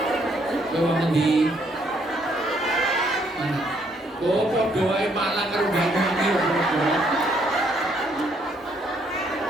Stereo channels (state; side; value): normal; both; correlation 0.69